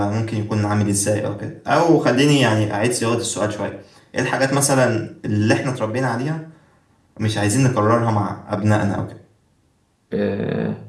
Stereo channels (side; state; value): both; identical; correlation 1.00